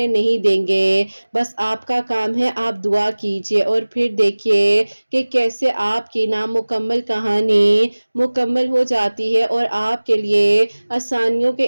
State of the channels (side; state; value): both; inverted; correlation -1.00